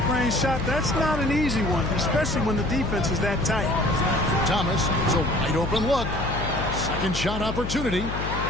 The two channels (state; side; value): noise; left; hum, 5 dB below the sound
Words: range shot, that's not an easy one, especially when the defense is that tight. Thomas, it's a wide-open look. Second shot opportunity